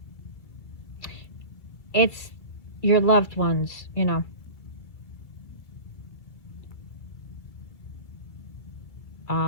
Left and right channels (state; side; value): late; right; 2.1 ms